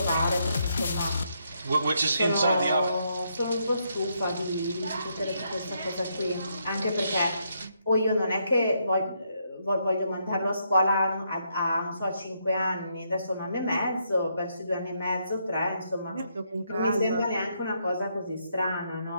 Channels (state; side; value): inverted; both; correlation -0.76